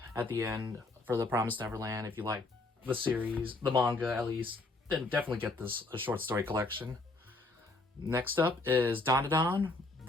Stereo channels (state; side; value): quieter; right; 3.1 dB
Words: at the end for The Promised Neverland. If you like the series, the manga at least, then definitely get this a short story collection. Next up is Dandadan,